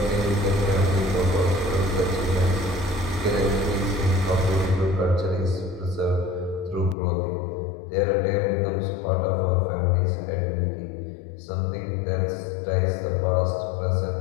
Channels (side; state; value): right; drops out; at 7.0 s